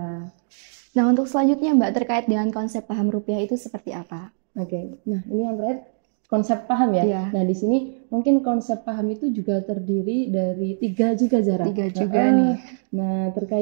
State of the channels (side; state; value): left; silent; digital silence